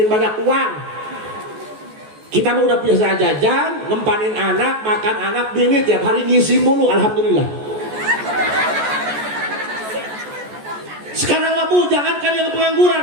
banyak uang. Kita mah udah biasa jajan, ngempanin anak, makan anak, bini tiap hari ngisi mulu, alhamdulillah. Sekarang bu, jangankan yang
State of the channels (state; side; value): late; left; 14 ms